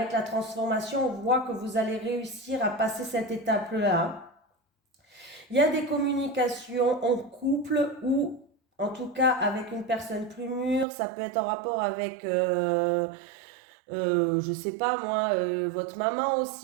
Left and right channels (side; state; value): left; drops out; at 10.9 s